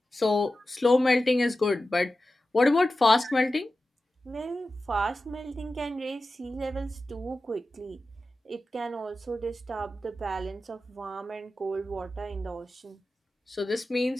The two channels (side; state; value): both; normal; correlation 0.93